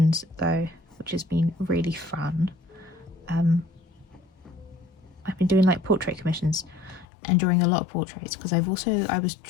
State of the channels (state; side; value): drops out; right; at 7.1 s